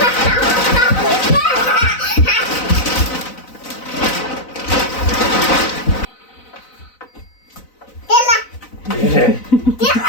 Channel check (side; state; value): right; late; 4.0 ms